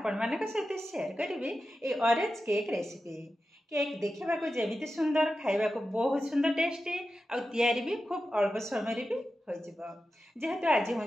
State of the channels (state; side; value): normal; both; correlation 0.92